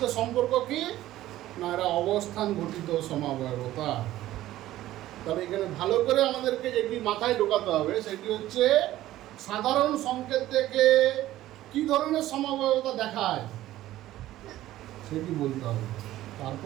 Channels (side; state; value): left; quieter; 14.7 dB